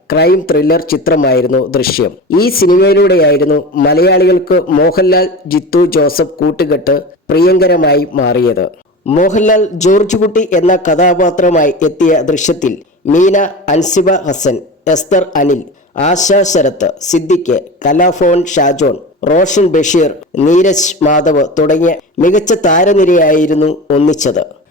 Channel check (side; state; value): both; normal; correlation 0.30